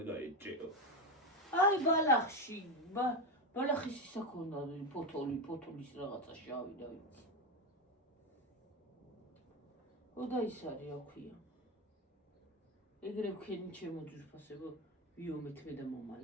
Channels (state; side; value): normal; both; correlation 0.14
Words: გაეჭეო. აი ბალახში, ბალახის ისა ქონდა ფოთოლის რაღაცა შავი და ვიცი. და ის არის რა ქვია. ეგრე ვქენი ჩემო ძვირფასებო, ვიომეთ მე და